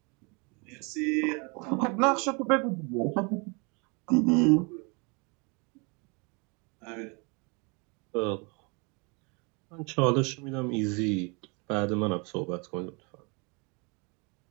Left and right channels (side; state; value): left; quieter; 31.5 dB